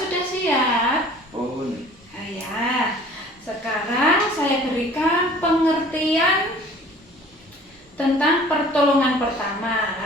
siap? Pun. Ya. Sekarang saya berikan pengertian tentang pertolongan pertama.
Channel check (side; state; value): both; normal; correlation 0.49